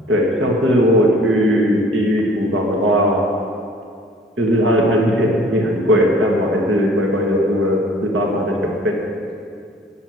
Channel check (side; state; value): both; normal; correlation 0.51